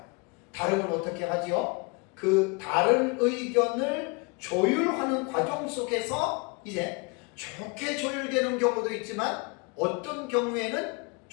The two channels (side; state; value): right; quieter; 29.8 dB